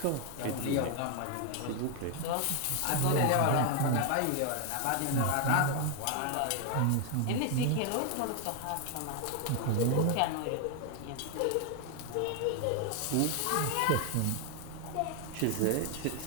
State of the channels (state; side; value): different; both; correlation 0.01